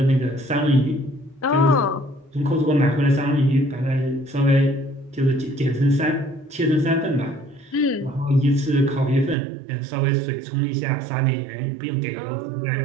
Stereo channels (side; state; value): left; drops out; at 9.3 s